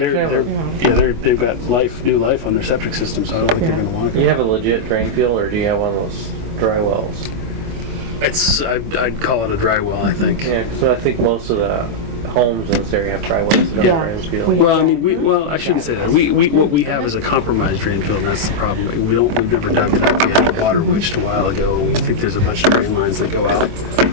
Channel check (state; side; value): late; left; 24 ms